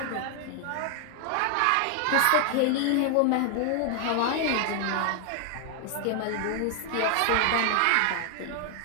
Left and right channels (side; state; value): both; different; correlation 0.00